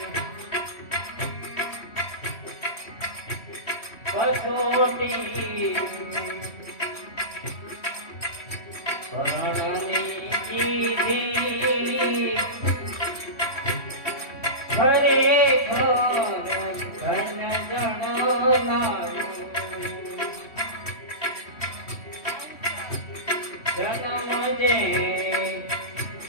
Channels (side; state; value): right; late; 3.1 ms